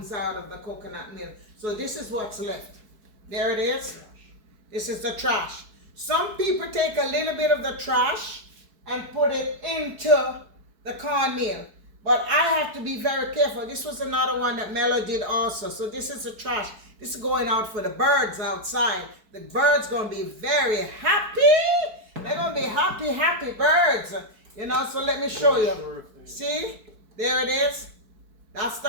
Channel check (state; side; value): late; left; 4.6 ms